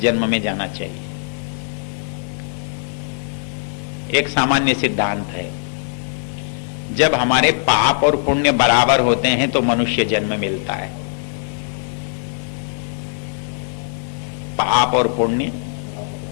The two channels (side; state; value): right; silent; digital silence